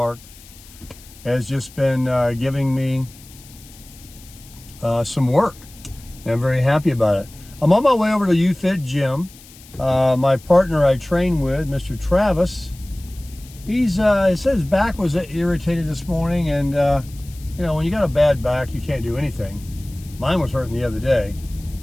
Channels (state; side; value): noise; left; hiss, 22 dB below the sound